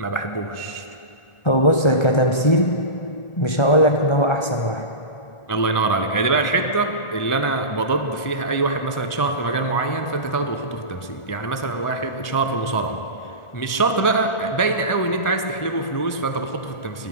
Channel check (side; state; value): right; late; 1.4 ms